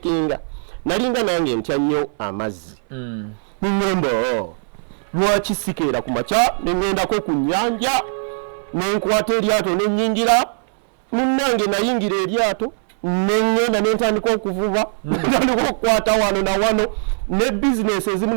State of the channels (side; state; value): left; silent; 64 dB below the other